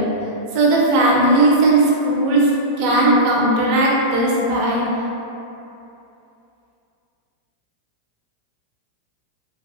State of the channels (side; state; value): left; late; 18 ms